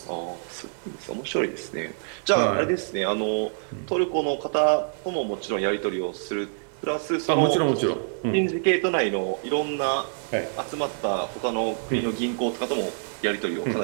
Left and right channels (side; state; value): left; silent; digital silence